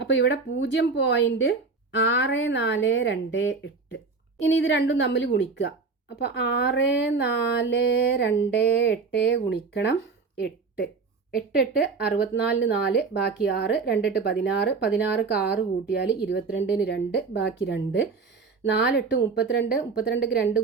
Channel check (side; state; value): left; quieter; 4.5 dB